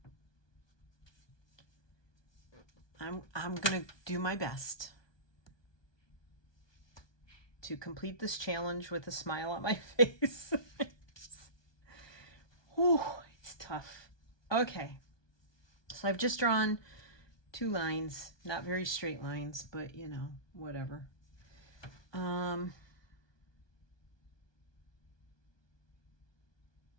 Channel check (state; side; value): late; right; 1.2 ms